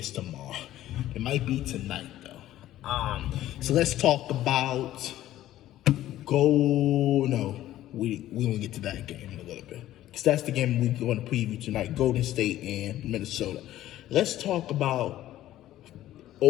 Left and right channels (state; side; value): quieter; right; 13.8 dB